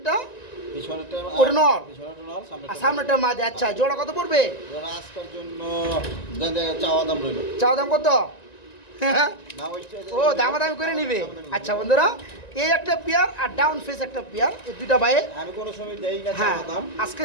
পিছনেরটা ওটা নর। পিছনেরটা নর আর সামনেরটা মাদি। আচ্ছা জোড়া কত পড়বে? ওরা আজকের জন্য চাওয়া দাম রইল। চাওয়া দাম কত? না ওইটা ও দামাদামি করে নিবে। আচ্ছা বন্ধুরা এই একটা পেয়ার আর ডাউন ফেস একটা পেয়ার, এই দুইটা ভাই আমি কোনো সময় দেই না হ্যাঁ চাওয়া দাম। আজকে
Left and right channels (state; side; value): late; right; 1.9 ms